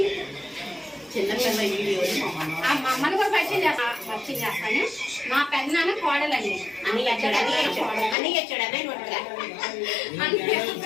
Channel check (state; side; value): drops out; right; at 8.2 s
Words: అమ్మను కూడా పరిచయం చేస్తాను. మా పెద్దనాన్న కోడలండి.